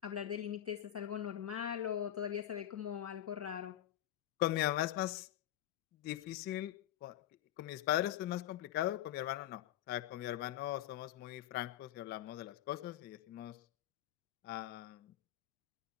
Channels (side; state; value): right; quieter; 12.4 dB